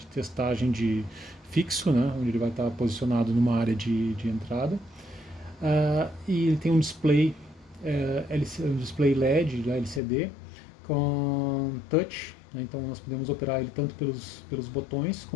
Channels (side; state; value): right; drops out; at 10.0 s